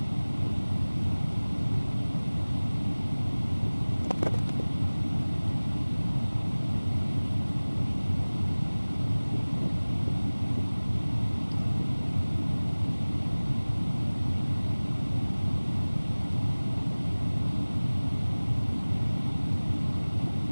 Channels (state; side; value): inverted; both; correlation -1.00